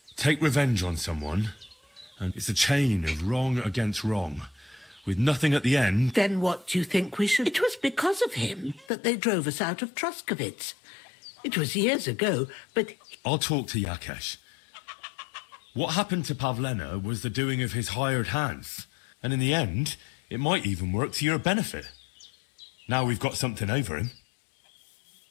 Take revenge on someone, and it's a chain of wrong against wrong, with nothing at the end. Then what do you think we should... It was because of him that they drove us out of Troskovitz. It was years ago, but... I'll talk to Yakesh. What happened to Pavlena was the doing of his hired hands, and in the end, it might even work to your benefit. Now we've got something over him.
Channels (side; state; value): right; drops out; at 8.9 s